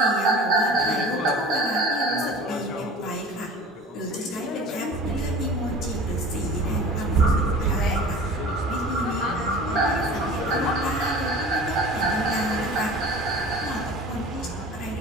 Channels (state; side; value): normal; both; correlation 0.40